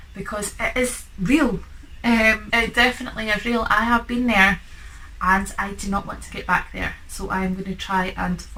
because it is real. It definitely is real. I have been there and I do not want to get back there. So I'm going to try and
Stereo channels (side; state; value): both; identical; correlation 1.00